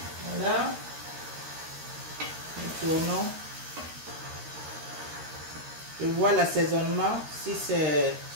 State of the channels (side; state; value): left; late; 13 ms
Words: Voilà. Nous tournons. Je vois l'assaisonnement si c'est